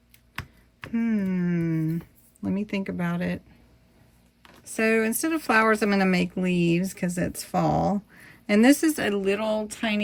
Let me think about it. So instead of flowers, I'm going to make leaves because it's fall. And this is a little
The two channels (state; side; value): identical; both; correlation 1.00